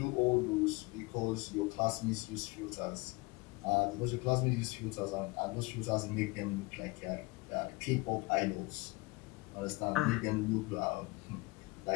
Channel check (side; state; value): right; quieter; 24.2 dB